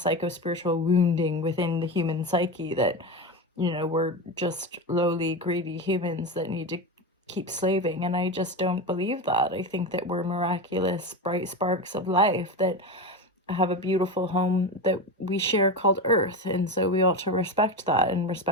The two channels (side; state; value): both; normal; correlation 0.20